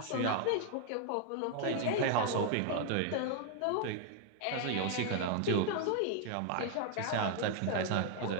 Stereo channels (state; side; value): different; both; correlation 0.00